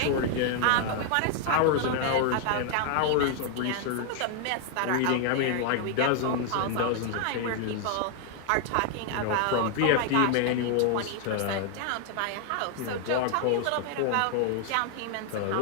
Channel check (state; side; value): different; both; correlation 0.00